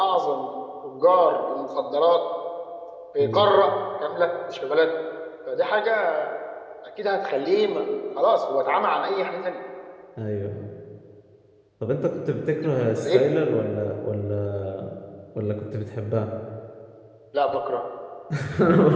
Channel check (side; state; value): both; identical; correlation 1.00